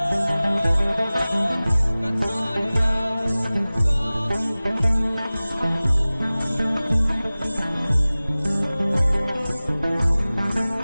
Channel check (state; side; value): inverted; both; correlation -0.98